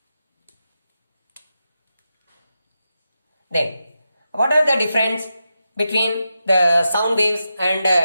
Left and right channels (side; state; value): both; inverted; correlation -0.89